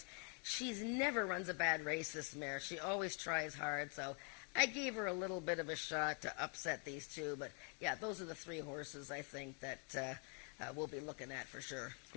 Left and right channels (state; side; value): quieter; right; 31.6 dB